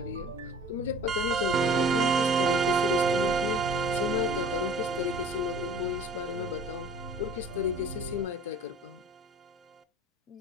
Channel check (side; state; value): both; normal; correlation 0.45